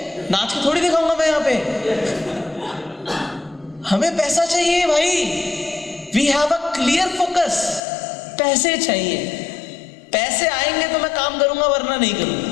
नाच के थोड़ी दिखाऊंगा मैं यहाँ पे। हमें पैसा चाहिए भाई। We have a clear focus. पैसे चाहिए, पैसे आएंगे तो मैं काम करूंगा वरना नहीं करूंगा।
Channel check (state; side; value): drops out; right; at 7.8 s